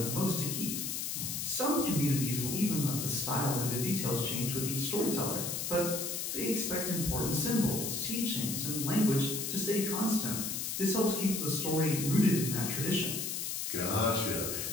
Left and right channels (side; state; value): left; noise; hiss, 3 dB below the sound